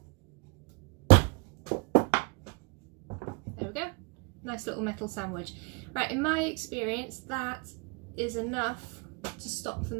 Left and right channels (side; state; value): left; quieter; 30.9 dB